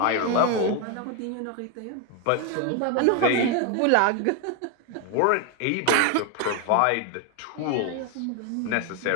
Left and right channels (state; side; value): different; both; correlation 0.01